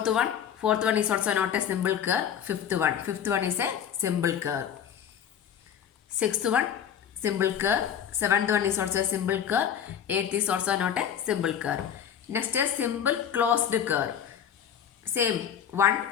one is also not a simple curve. Fifth one is a simple curve. Sixth one, simple curve. Seventh one is also a simple curve. Eighth is also not a simple curve. Next is simple closed curve. Same one,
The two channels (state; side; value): quieter; right; 8.8 dB